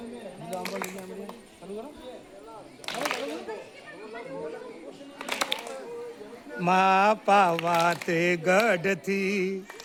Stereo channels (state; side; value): identical; both; correlation 1.00